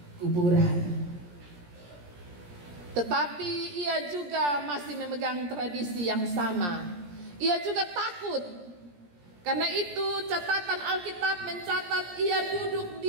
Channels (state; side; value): late; left; 17 ms